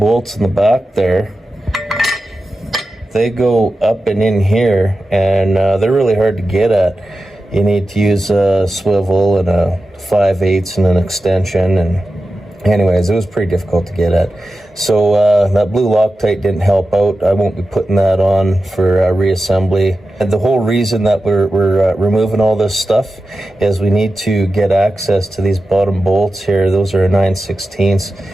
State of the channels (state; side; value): normal; both; correlation 0.92